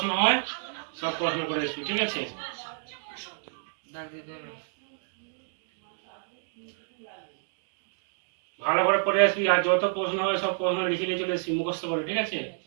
হয় সব প্রশ্ন করে আসবি, ঠিক আছে? ভালো করে পড়ে আসবি, আর যত প্রশ্ন হয় সব প্রশ্ন লিখে নিয়ে চলে আসবি, মুখস্থ করে, ঠিক আছে?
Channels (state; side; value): silent; left; digital silence